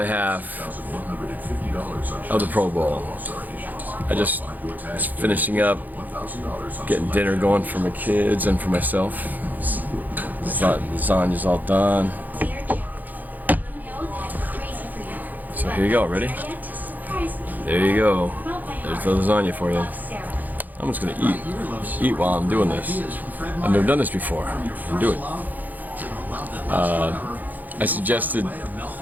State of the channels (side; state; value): left; late; 0.083 ms